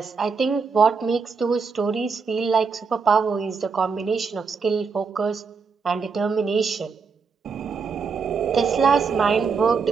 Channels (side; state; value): left; quieter; 5.3 dB